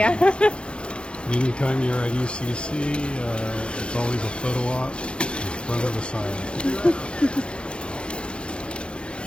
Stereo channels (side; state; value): right; late; 0.056 ms